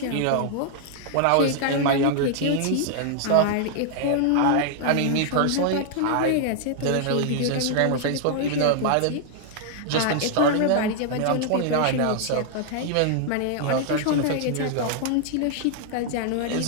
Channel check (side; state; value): both; different; correlation -0.01